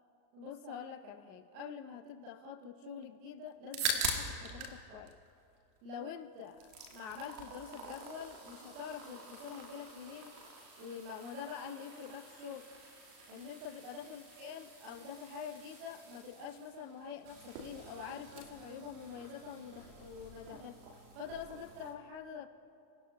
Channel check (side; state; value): left; late; 38 ms